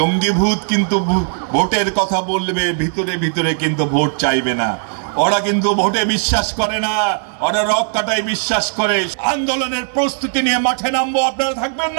ভূত কিন্তু ভোটের কথা বলবে, ভিতরে ভিতরে কিন্তু ভোট চাইবে না। ওরা কিন্তু ভোটে বিশ্বাস করে না, ওরা রক কাটায় বিশ্বাস করে। আন্দোলনের প্রস্তুতি নিয়ে মাঠে নামবো, আপনারা থাকবেন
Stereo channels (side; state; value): left; silent; digital silence